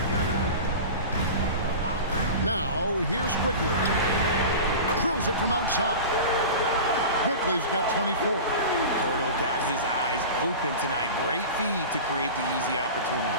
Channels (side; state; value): both; inverted; correlation -0.32